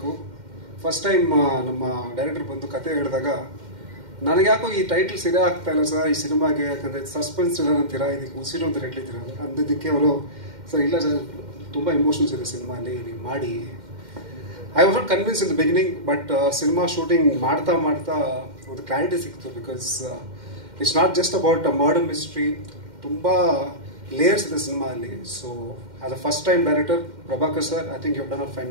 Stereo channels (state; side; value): late; left; 2.1 ms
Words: ಫಸ್ಟ್ ಟೈಮ್ ನಮ್ಮ ಡೈರೆಕ್ಟರ್ ಬಂದು ಕತೆ ಹೇಳಿದಾಗ ನನಗೆ ಯಾಕೋ ಈ ಟೈಟ್ಲ್ ಸರಿಯ ಆಗ್ತಾ ಇಲ್ಲ ಸರ್ ಈ ಸಿನಿಮಾಗೆ, ಯಾಕಂದರೆ ಸಸ್ಪೆನ್ಸ್ ಇಲ್ಲ ಅಂತೀರಾ, ಇದಕ್ಕೆ ಉಸಿರು ಅಂತ ಹೇಳಿದ್ದೀರ ಅಂದಿದ್ದಕ್ಕೆ ಅವರು ಸರ್ ಇಲ್ಲ ಸರ್ ತುಂಬ ಎಮೋಷನ್ಸ್ ಇದೆ ಸಿನಿಮಾಲಿ, ನೀವು ಮಾಡಿ. I was not convince in the beginning, but cinema shooting ಮಾಡ್ತಾ ಮಾಡ್ತಾ ಒಂದು ಕ್ಲಾರಿಟಿ ಸಿಕ್ತು. Because it's not just about a murder mystery, ತುಂಬ ಲೇಯರ್ಸ್ ಇದೆ ಸಿನಿಮಾ ಅಲ್ಲಿ. So as a first time director Prabhakar sir, I think you done a